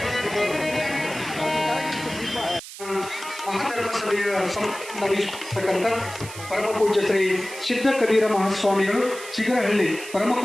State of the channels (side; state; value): right; noise; hiss, 13 dB below the sound